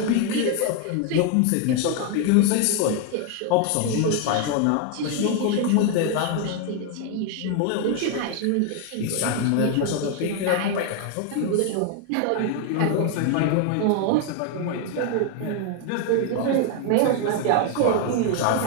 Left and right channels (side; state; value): both; different; correlation 0.01